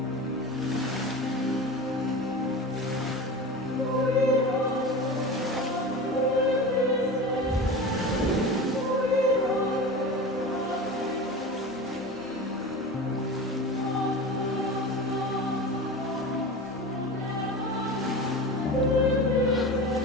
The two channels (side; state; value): both; normal; correlation 0.30